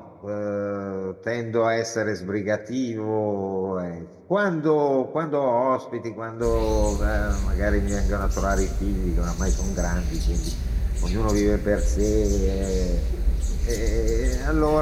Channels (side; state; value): both; identical; correlation 1.00